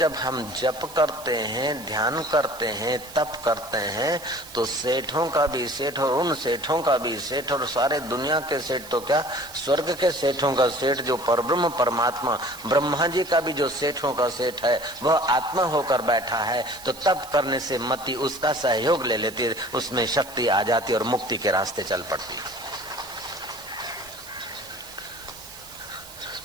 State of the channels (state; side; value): noise; right; hiss, 17 dB below the sound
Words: हम जप करते हैं, ध्यान करते हैं, तप करते हैं, तो सेठों का भी सेठ और उन सेठों का भी सेठ और सारे दुनिया के सेठ तो क्या, स्वर्ग के सेठों का सेठ जो परब्रह्म परमात्मा ब्रह्मा जी का भी जो सेठों का सेठ है वह आत्मा होकर बैठा है। तो तप करने से मति उसका सहयोग ले लेती है, उसमें शक्ति आ जाती है और मुक्ति के रास्ते चल पड़ती है।